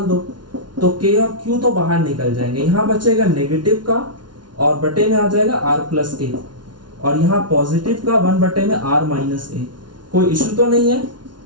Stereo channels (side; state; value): left; late; 0.70 ms